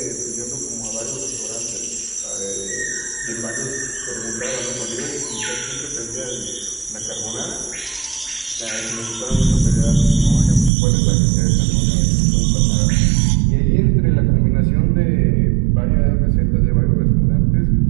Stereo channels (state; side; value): drops out; left; at 10.7 s